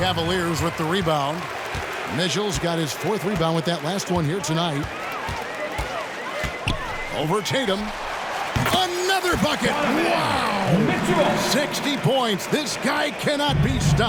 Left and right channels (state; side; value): identical; both; correlation 1.00